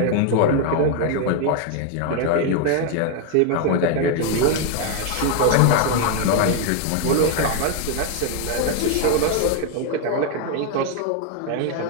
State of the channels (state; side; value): different; both; correlation 0.01